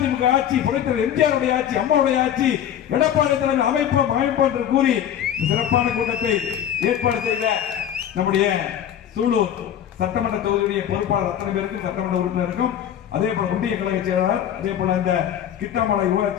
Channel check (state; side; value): quieter; right; 9.9 dB